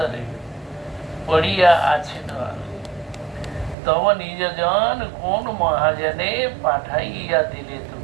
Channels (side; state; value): left; drops out; at 3.8 s